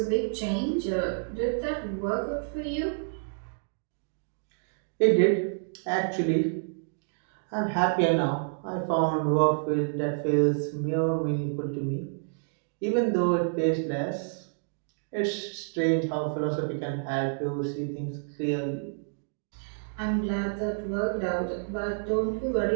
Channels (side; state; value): left; silent; digital silence